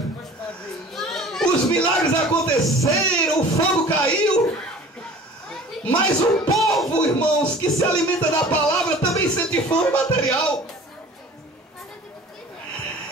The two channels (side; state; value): both; normal; correlation 0.44